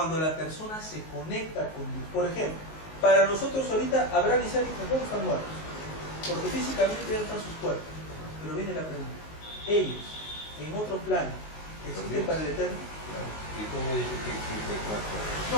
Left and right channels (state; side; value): late; right; 19 ms